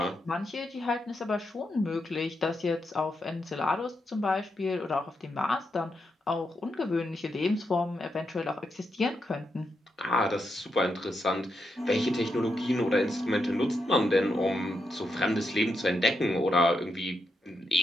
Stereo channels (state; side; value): normal; both; correlation 0.83